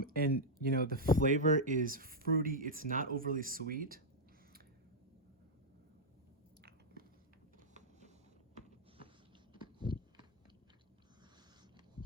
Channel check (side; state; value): both; normal; correlation -0.04